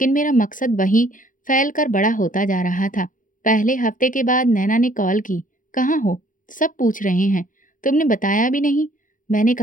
मेरा मकसद वही फैल कर बड़ा होता जा रहा था। पहले हफ्ते के बाद नैना ने कॉल की। कहाँ हो? सब पूछ रहे हैं। तुमने बताया भी नहीं। मैंने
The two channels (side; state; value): right; late; 0.39 ms